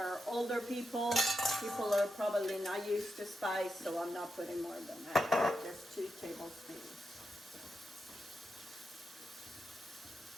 older people. People are probably not used to spice, so I'm not putting more than that. Just 2 tablespoons.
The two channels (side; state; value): both; normal; correlation 0.86